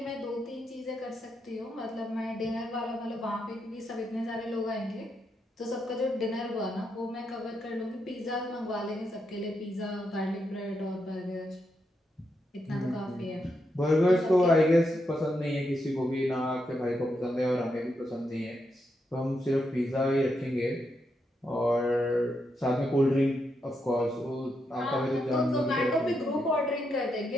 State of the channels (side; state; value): both; normal; correlation 0.82